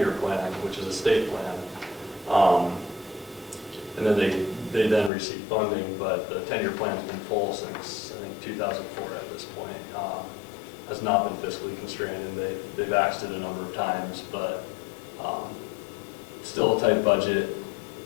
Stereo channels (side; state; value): right; drops out; at 5.1 s